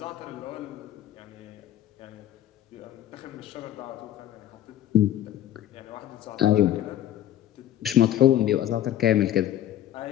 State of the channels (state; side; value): quieter; right; 12.1 dB